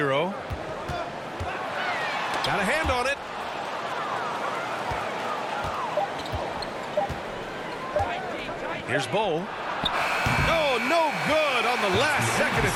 Got a hand on it. Here's Bull. Oh, no good on the last second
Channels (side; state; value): both; identical; correlation 1.00